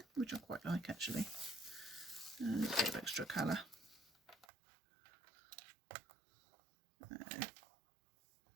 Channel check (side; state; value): left; drops out; at 4.5 s